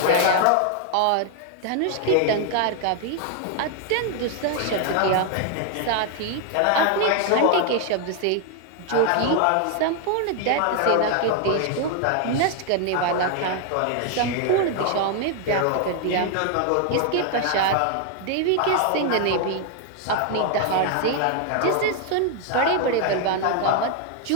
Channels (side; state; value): both; different; correlation 0.00